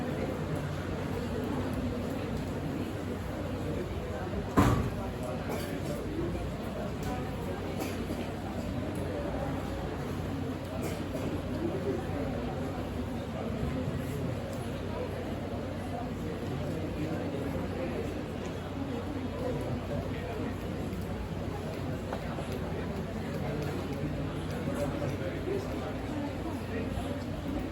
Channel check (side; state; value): both; identical; correlation 1.00